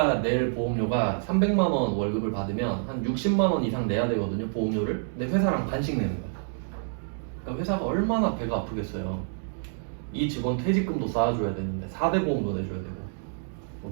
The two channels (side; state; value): left; silent; 60 dB below the other